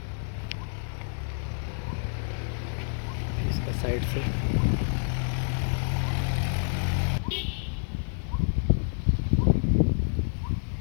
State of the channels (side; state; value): right; silent; digital silence